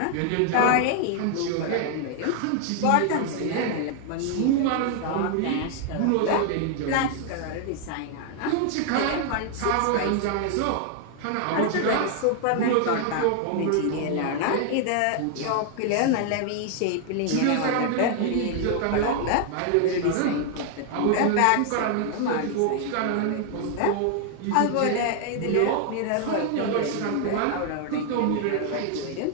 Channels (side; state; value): both; different; correlation 0.00